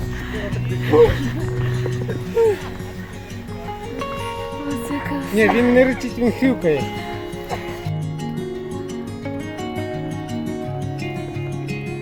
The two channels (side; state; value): both; identical; correlation 1.00